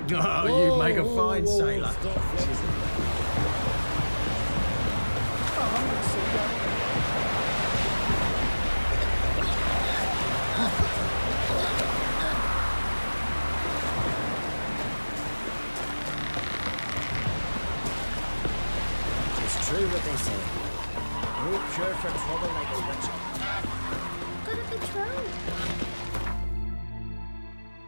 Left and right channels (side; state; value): both; inverted; correlation -1.00